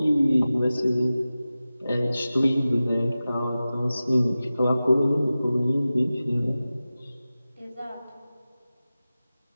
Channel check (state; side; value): inverted; both; correlation -0.95